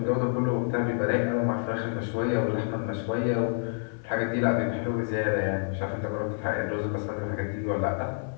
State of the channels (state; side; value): silent; right; digital silence